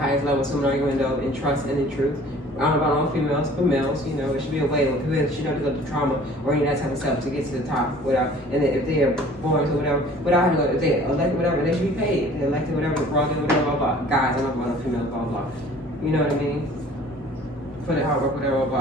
highest level, so I'm going to go in trust and in truth. I don't know about all females, but males, it should be a way when people should not go through trauma or any of that type of stuff to get to the top without, and then if they are born or whatever, without having to go, if they elected whatever, they should be paid. If they elected whatever, blah, blah, blah. Guys, I'm not about females, blah, blah. You know what I mean? For the hard work, whatever,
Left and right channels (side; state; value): both; normal; correlation 0.50